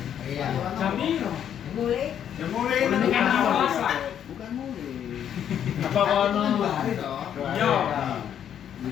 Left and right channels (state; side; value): quieter; right; 9.4 dB